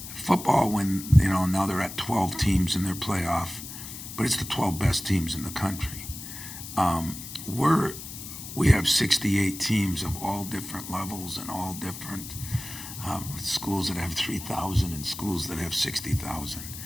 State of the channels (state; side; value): noise; left; hiss, 11 dB below the sound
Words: football when, now they're at 12 teams in their playoff, but it's the 12 best teams in the country. We have 68 teams of all different levels and all different schools that have 3,000 and schools that have 60,000.